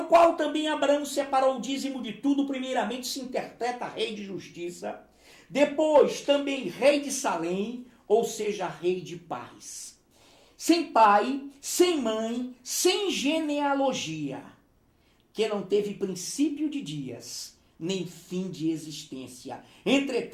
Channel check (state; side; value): identical; both; correlation 1.00